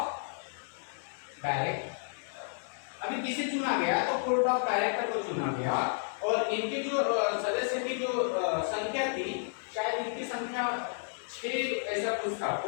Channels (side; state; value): right; silent; digital silence